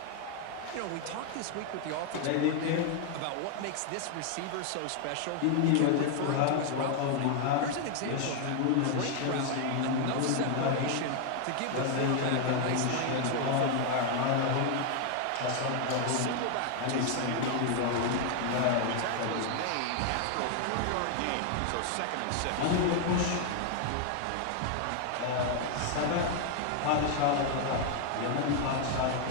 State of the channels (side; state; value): both; different; correlation 0.00